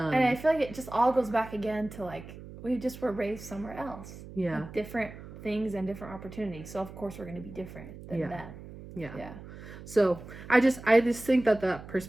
I feel like it just all goes back again to, like, we just were raised somewhere else. Yeah. Like, different things and different opportunities, so of course we're going to be different than them. Yeah. So I just think that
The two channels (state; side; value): noise; right; hum, 15 dB below the sound